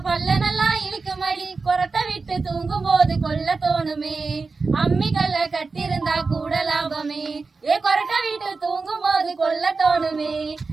பல்ல நல்லா இழுக்குமடி. கொரட்டை விட்டு தூங்கும் போது கொல்ல தோணுமே, அம்மிக்கல்ல கட்டிருந்தா கூட லாபமே. ஏ கொரட்டை விட்டு தூங்கும் போது கொல்ல தோணுமே,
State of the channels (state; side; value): quieter; left; 4.2 dB